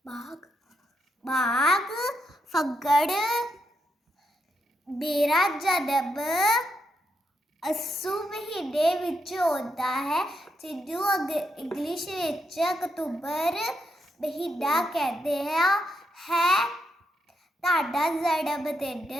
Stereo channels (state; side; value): normal; both; correlation 0.80